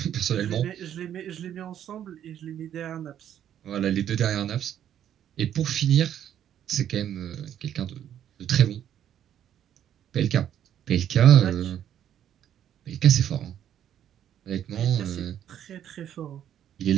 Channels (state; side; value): quieter; left; 10.3 dB